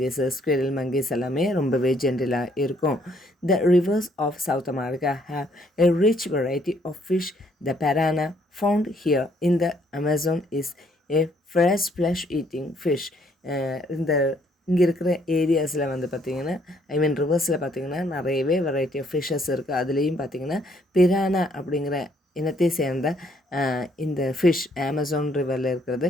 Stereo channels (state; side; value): normal; both; correlation 0.67